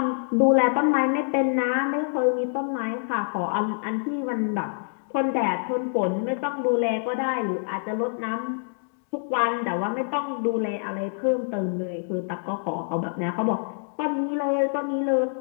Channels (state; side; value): silent; right; digital silence